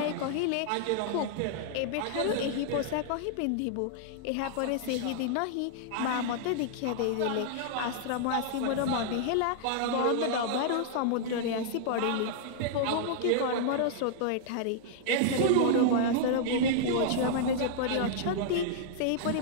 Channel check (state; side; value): different; both; correlation -0.01